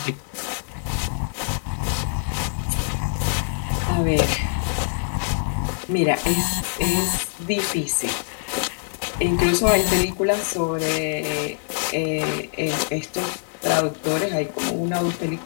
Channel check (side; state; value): right; silent; 61 dB below the other